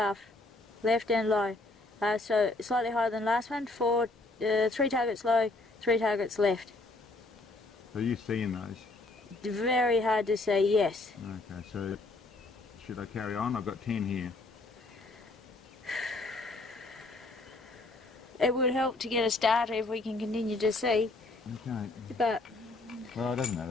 Left and low. So slightly higher than last one. 3 targets low, 3 targets left. So you're seeing those? Very hard to say yes. Okay, so should I carry on? I've got 10 here. It would help to get a starter if we can continue to see. Okay. But Well, it doesn't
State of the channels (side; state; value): right; quieter; 3.1 dB